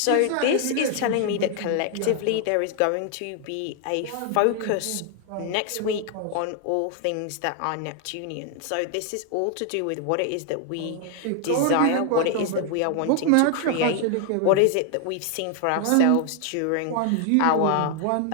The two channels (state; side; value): different; both; correlation 0.00